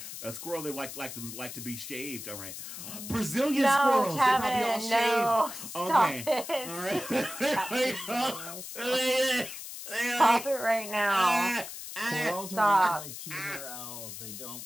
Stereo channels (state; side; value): noise; left; hiss, 10 dB below the sound